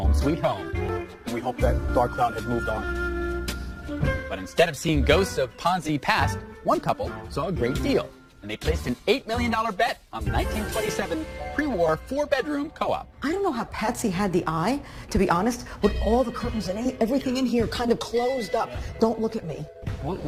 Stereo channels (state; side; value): identical; both; correlation 1.00